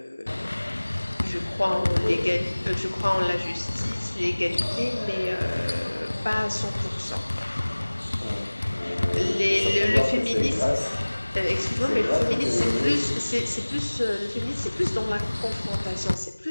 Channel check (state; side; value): inverted; both; correlation -1.00